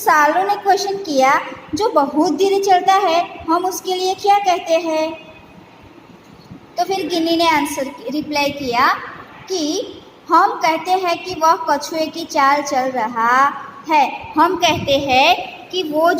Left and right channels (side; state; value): both; identical; correlation 1.00